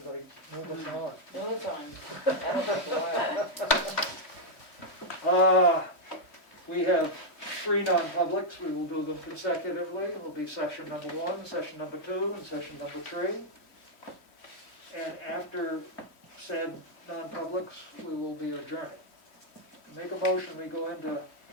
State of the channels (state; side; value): late; right; 3.1 ms